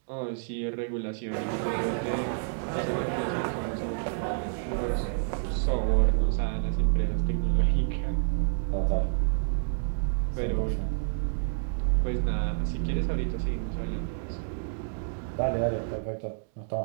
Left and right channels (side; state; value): left; silent; digital silence